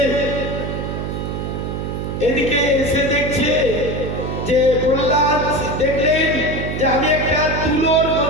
এদিকে এসে দেখছে যে প্রহ্লাদ দেখলেন যে আমি একটা তুলোর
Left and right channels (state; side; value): noise; right; hum, 4 dB below the sound